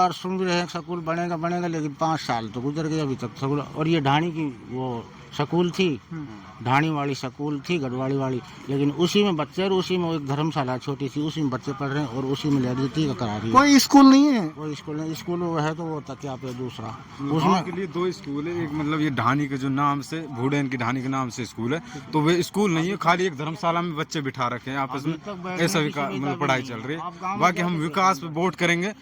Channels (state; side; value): identical; both; correlation 1.00